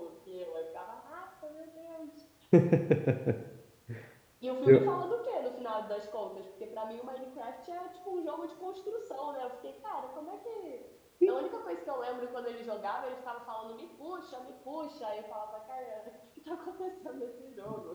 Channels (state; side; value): identical; both; correlation 1.00